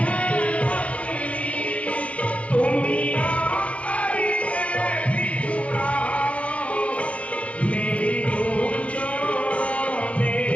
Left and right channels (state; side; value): late; right; 0.063 ms